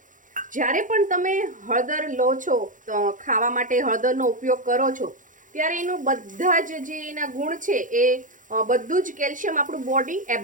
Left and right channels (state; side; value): late; left; 0.38 ms